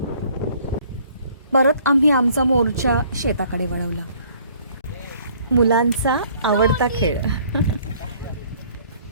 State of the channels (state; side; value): inverted; both; correlation -0.58